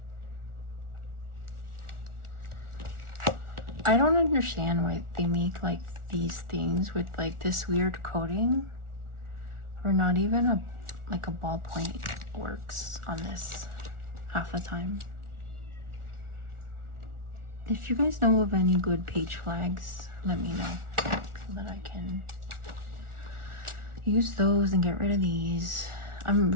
I don't understand why they make like these things with like this weird coating, or not even a like a ballpoint works on this half the time. If you guys know of any good page flags, let me know so that I can use those and get rid of these. I'm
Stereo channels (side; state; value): left; late; 1.4 ms